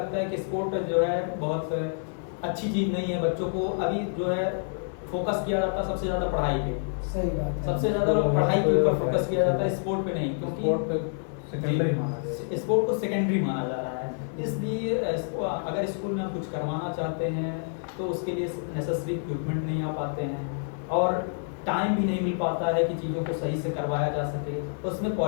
है कि स्पोर्ट जो है बहुत अच्छी चीज़ नहीं है, बच्चों को अभी जो है फोकस किया जाता है सबसे ज़्यादा पढ़ाई पे। सही बात है। सबसे ज़्यादा पढ़ाई के ऊपर फोकस किया जाता है, स्पोर्ट पे नहीं, क्योंकि स्पोर्ट को सेकेंडरी माना जा रहा है। इसलिए अगर स्कूल में हम कुछ करवाना चाहते हैं तो उसके लिए नेसेसरी इक्विपमेंट नहीं आ पाते हैं और टाइम भी नहीं मिल पाता है कि चीज़ों को सही से करवाया जा सके। उसमें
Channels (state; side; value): silent; right; digital silence